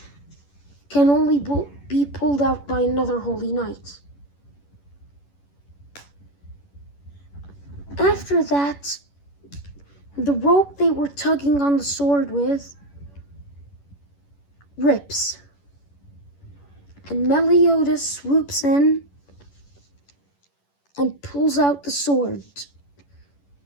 can only be pulled out by another holy knight. After that, the rope they were tugging on the sword with rips, and Meliodas swoops in and pulls out the sword,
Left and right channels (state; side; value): late; right; 11 ms